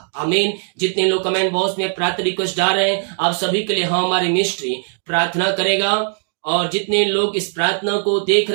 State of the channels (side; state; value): left; silent; 63 dB below the other